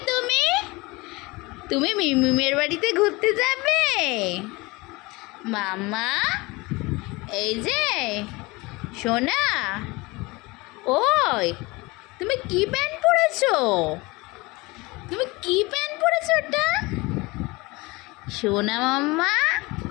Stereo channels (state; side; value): quieter; right; 23.7 dB